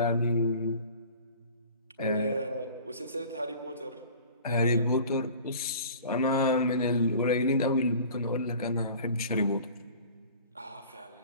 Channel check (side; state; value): both; inverted; correlation -0.45